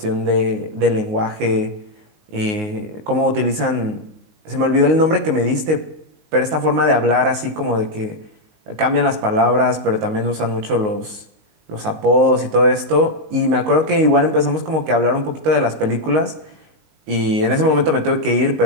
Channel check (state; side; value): late; left; 19 ms